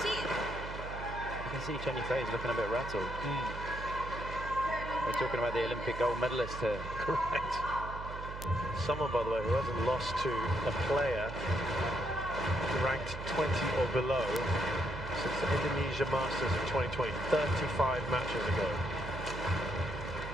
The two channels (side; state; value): right; noise; hum, 9 dB below the sound